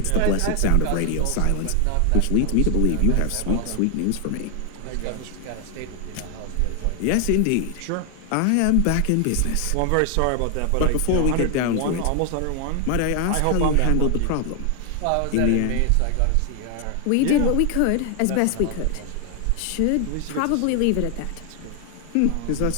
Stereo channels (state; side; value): different; both; correlation 0.00